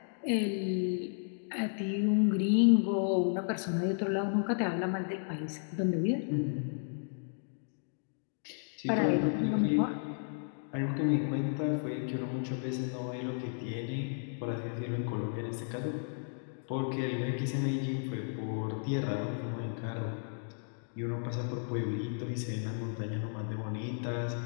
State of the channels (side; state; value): right; silent; digital silence